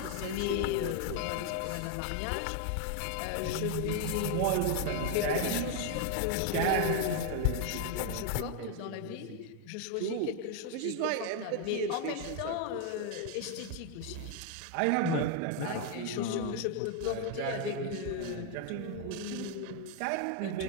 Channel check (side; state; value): both; different; correlation 0.01